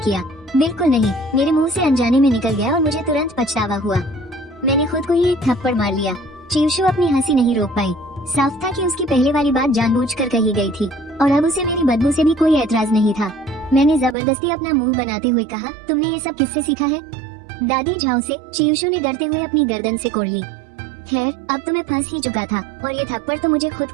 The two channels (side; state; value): left; drops out; at 14.2 s